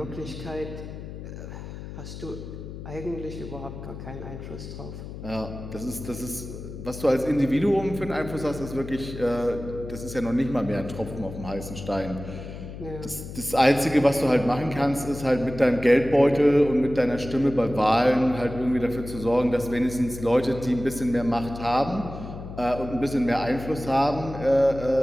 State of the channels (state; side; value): noise; left; hum, 11 dB below the sound